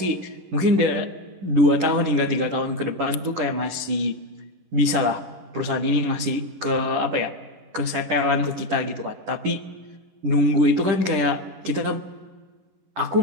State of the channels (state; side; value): late; left; 10 ms